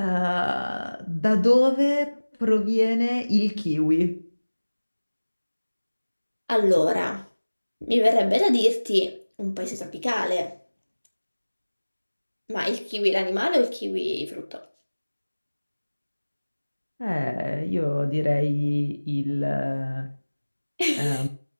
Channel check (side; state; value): both; inverted; correlation -1.00